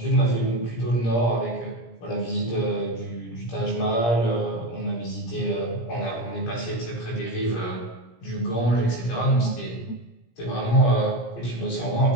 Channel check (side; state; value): right; late; 17 ms